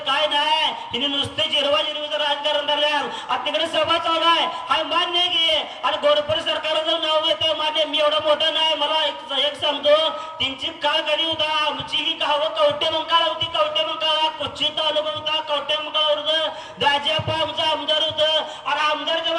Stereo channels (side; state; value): both; identical; correlation 1.00